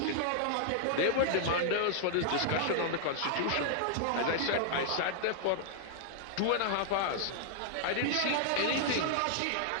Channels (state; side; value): different; both; correlation -0.01